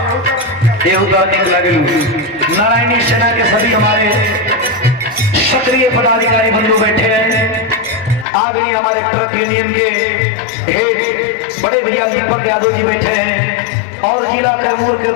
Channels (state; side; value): drops out; right; at 8.2 s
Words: निक लगेलू। नारायणी सेना के सभी हमारे सक्रिय पदाधिकारी बंधु बैठे हैं। आदरणीय हमारे ट्रक यूनियन के हेड बड़े भैया दीपक यादव जी बैठे हैं और जिला कैमूर के